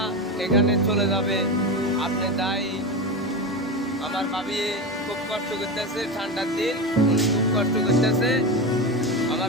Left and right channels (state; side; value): normal; both; correlation 0.20